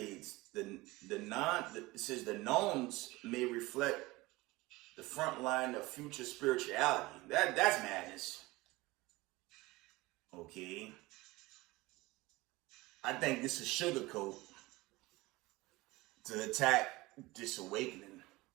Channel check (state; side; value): quieter; left; 20.9 dB